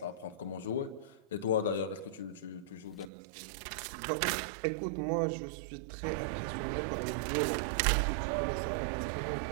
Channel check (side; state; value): left; drops out; at 3.1 s